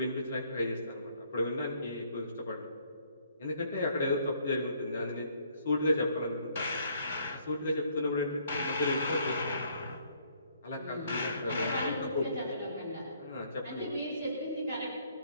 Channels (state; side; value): inverted; both; correlation -0.65